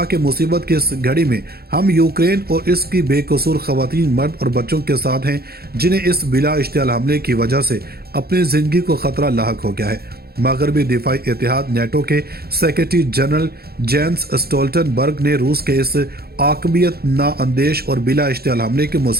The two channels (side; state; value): left; late; 0.45 ms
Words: کہ مصیبت کی اس گھڑی میں ہم یوکرین اور اس کی بے قصور خواتین، مرد اور بچوں کے ساتھ ہیں جنہیں اس بلا اشتعال حملے کی وجہ سے اپنی زندگی کو خطرہ لاحق ہو گیا ہے۔ مغربی دفاعی اتحاد نیٹو کے سیکرٹری جنرل جینس اسٹولٹنبرگ نے روس کے اس عاقبیت نااندیش اور بلا اشتعال حملے کی